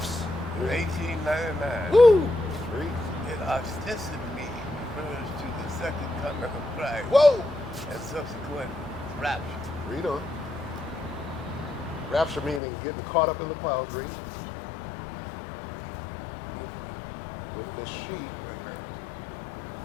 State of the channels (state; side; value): drops out; right; at 12.6 s